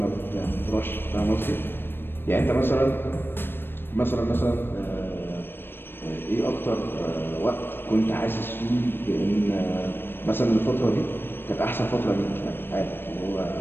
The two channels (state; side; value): late; right; 0.10 ms